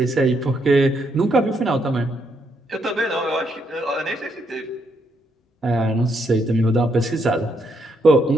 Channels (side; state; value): both; normal; correlation 0.76